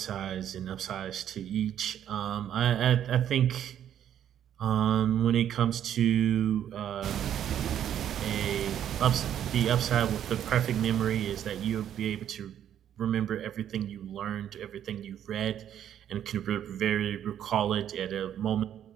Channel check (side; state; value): left; quieter; 10.2 dB